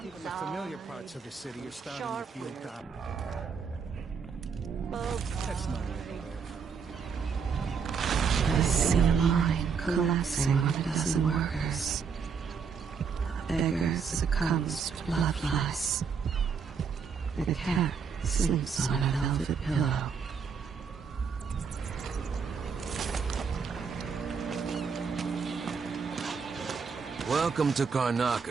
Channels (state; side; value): quieter; left; 6.0 dB